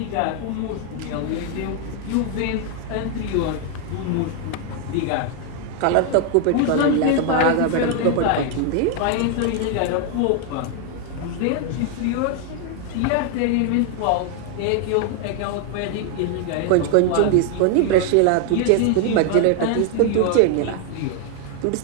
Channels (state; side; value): different; both; correlation 0.00